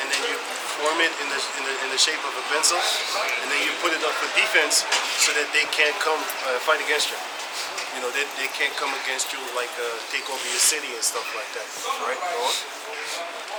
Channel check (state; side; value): identical; both; correlation 1.00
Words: then you form it in the shape of a pencil, and then you put it up for defense so that they can't come fight against you. You know, they can't come against you like take over your city and stuff like that. Right? Go on.